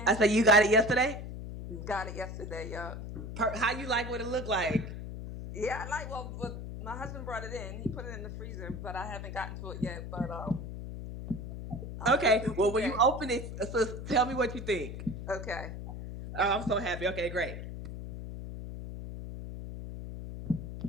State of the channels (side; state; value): left; noise; hum, 8 dB below the sound